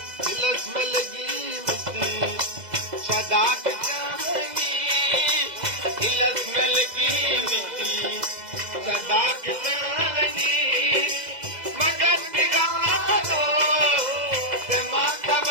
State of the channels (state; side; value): late; left; 2.0 ms